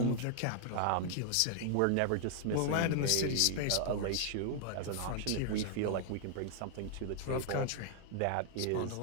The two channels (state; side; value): different; both; correlation 0.00